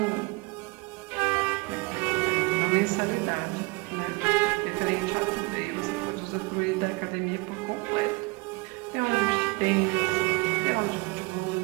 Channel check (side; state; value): left; quieter; 27.0 dB